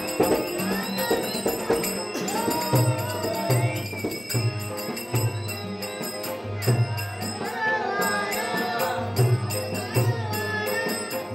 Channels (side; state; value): both; identical; correlation 1.00